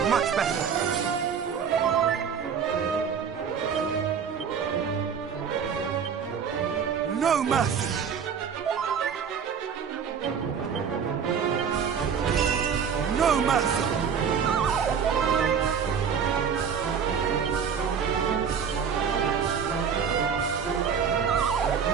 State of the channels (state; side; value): quieter; left; 7.0 dB